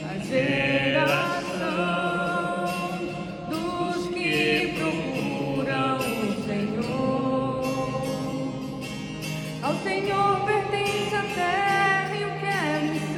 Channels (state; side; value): identical; both; correlation 1.00